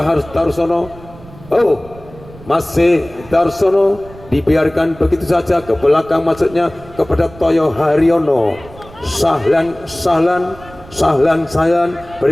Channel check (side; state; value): right; noise; rumble, 20 dB below the sound